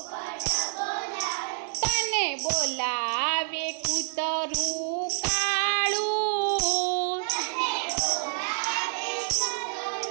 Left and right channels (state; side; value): silent; left; digital silence